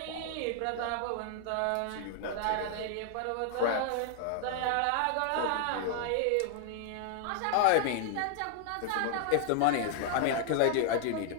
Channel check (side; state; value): both; different; correlation 0.00